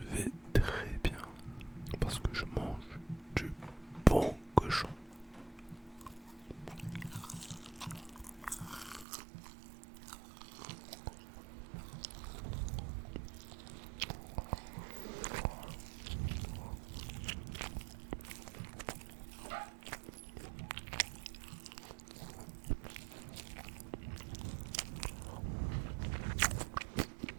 très bien parce que je mange du bon cochon.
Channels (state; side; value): drops out; left; at 9.1 s